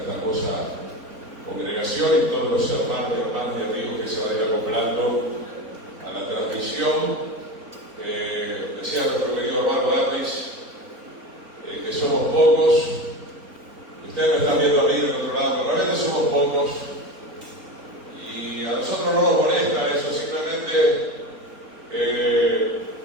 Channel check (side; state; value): left; late; 3.9 ms